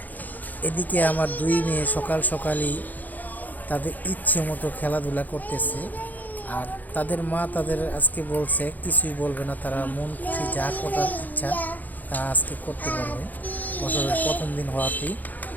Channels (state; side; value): late; right; 0.083 ms